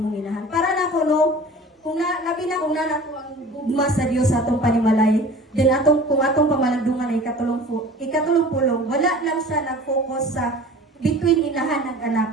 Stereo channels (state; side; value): normal; both; correlation 0.42